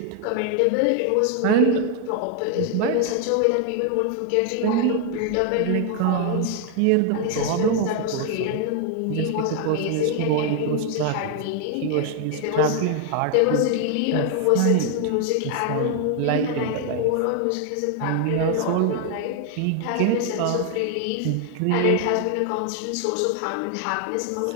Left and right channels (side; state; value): both; different; correlation 0.01